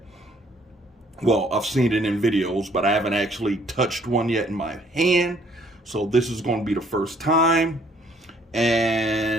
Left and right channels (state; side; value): normal; both; correlation 0.62